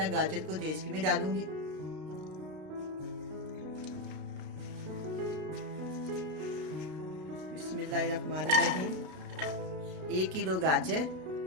गाजर को तेज में डालूंगी। बिस्मिल्लाहिर्रहमानिर्रहीम। 1 किलो गाजर,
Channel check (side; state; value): left; late; 32 ms